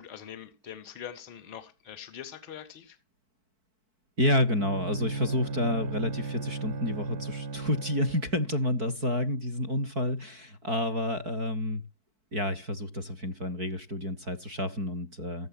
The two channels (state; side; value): late; left; 4.6 ms